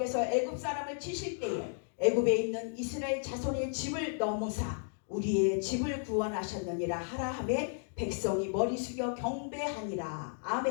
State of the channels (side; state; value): right; silent; digital silence